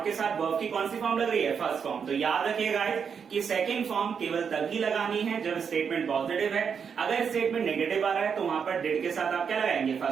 के साथ वर्ब की कौन सी फॉर्म लग रही है, फर्स्ट फॉर्म। तो याद रखिएगा गाइस कि सेकंड फॉर्म केवल तभी लगानी है जब स्टेटमेंट पॉजिटिव है। अगर स्टेटमेंट नेगेटिव आ रहा है तो वहां पर डेड के साथ आप क्या लगाएंगे,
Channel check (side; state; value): left; quieter; 6.7 dB